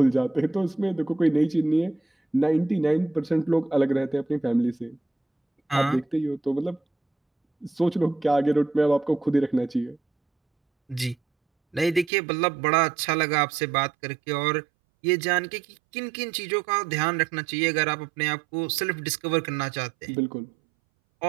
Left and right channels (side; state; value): left; drops out; at 12.1 s